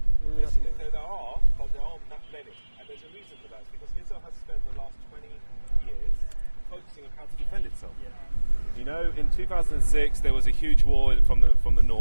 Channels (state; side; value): inverted; both; correlation -1.00